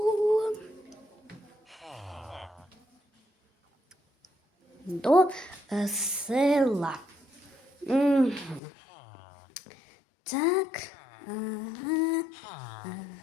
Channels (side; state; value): right; drops out; at 8.6 s